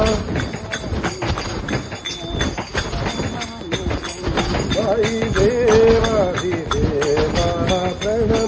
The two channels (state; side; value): identical; both; correlation 1.00